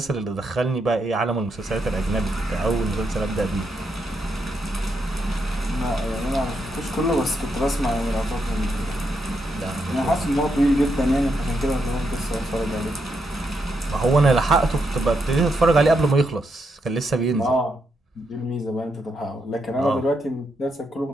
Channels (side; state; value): both; normal; correlation 0.81